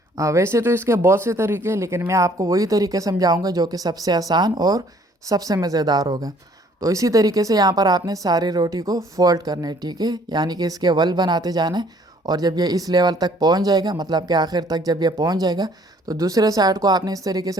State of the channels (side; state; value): both; normal; correlation 0.59